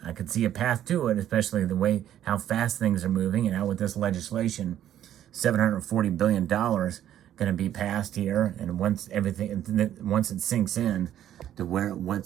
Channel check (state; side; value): quieter; left; 11.3 dB